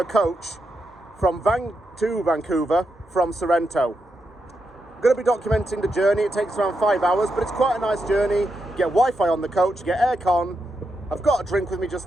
coach from to Vancouver from Sorrento. I'm going to be documenting the journey. It takes around 5 hours, but it's quite a nice journey. You get Wi-Fi on the coach, you get aircon. I've got a drink with me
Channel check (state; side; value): normal; both; correlation 0.85